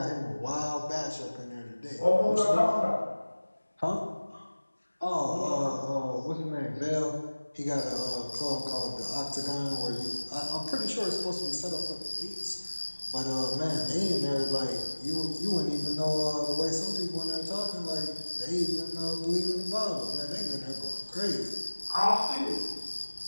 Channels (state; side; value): inverted; both; correlation -1.00